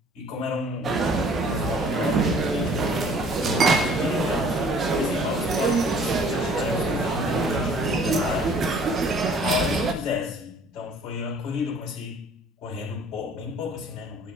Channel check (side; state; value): both; normal; correlation 0.54